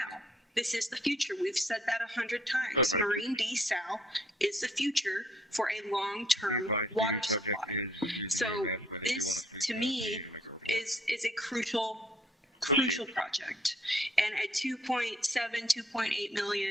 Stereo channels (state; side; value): normal; both; correlation 0.63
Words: This is the future. We've said that 100 times. Marine desal is the future for a long-term water supply. So this, to me, is a crucial project. And at 2.7, 2.8